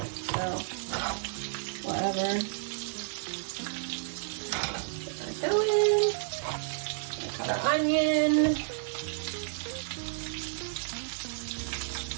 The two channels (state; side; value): silent; left; digital silence